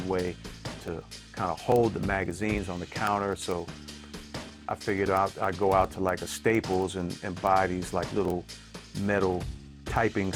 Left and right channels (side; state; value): both; identical; correlation 1.00